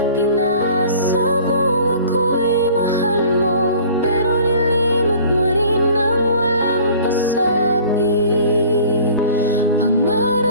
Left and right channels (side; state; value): both; inverted; correlation -0.48